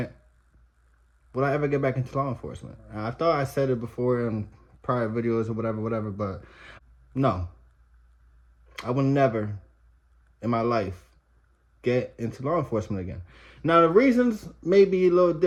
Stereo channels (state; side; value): identical; both; correlation 1.00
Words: Will I ever get back into law enforcement? I thought I said it before in prior videos or whatever, but no. I will never in my life get into law enforcement again. Now, the reasons may be a little